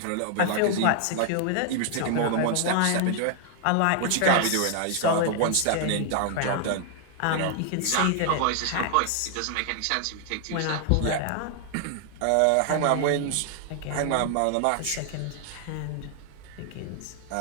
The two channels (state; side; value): different; both; correlation 0.00